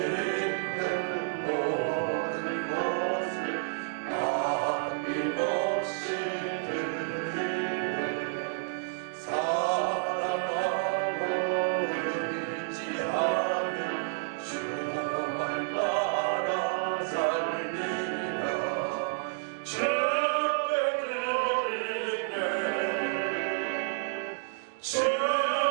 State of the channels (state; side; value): silent; left; digital silence